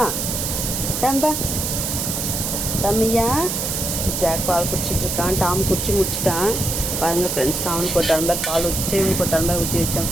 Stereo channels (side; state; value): right; noise; hiss, 2 dB below the sound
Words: டம்பா டம்மியா. ஜாக் பால் குடிச்சிட்டு இருக்கான். டாம் குடிச்சு முடிச்சிட்டான். பாருங்கள் ஃப்ரெண்ட்ஸ், அவனுக்கு ஒரு டம்ளர் பால் ஊற்றிச்சு, இவனுக்கு ஒரு டம்ளர் ஊற்றி வச்சான்,